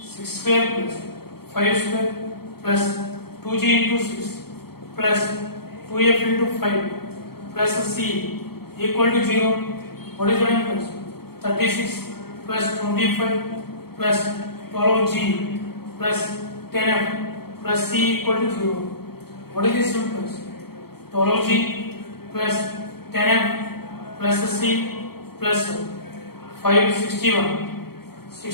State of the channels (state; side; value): late; right; 0.95 ms